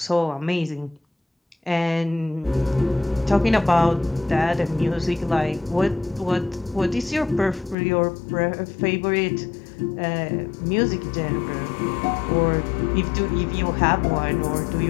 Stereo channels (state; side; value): drops out; right; at 7.8 s